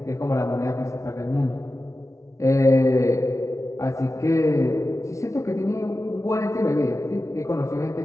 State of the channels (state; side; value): late; right; 0.14 ms